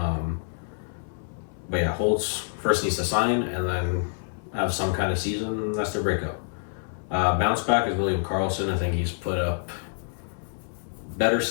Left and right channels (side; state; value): right; silent; 60 dB below the other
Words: But yeah, Holtz first needs to sign and then have some kind of season. That's their breakout. Bounce back is William Karlsson. I think he's put up better